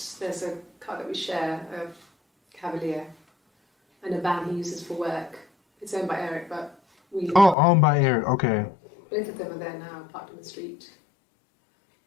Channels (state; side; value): drops out; right; at 7.6 s